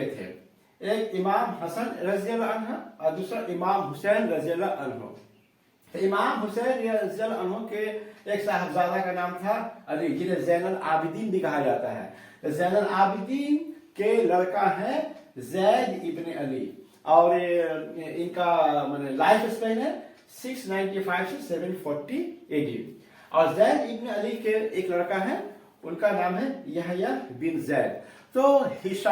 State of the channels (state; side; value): identical; both; correlation 1.00